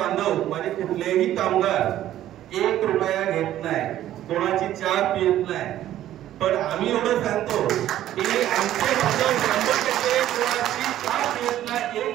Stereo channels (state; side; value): quieter; left; 12.7 dB